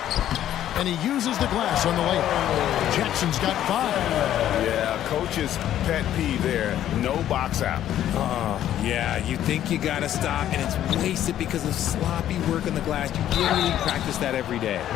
And he uses the glass on the layup. Jackson's got 5. Yeah, coach's pet peeve there. No box out. Yeah, you think you got to stop, and it's wasted because of sloppy work on the glass. You literally practice that every day.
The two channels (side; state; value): right; quieter; 11.7 dB